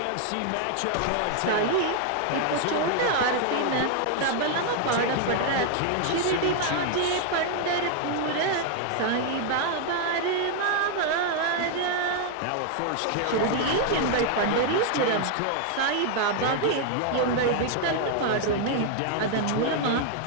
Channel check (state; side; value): different; both; correlation 0.00